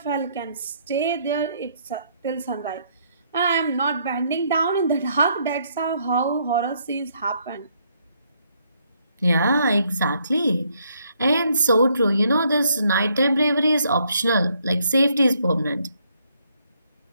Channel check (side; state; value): both; inverted; correlation -0.71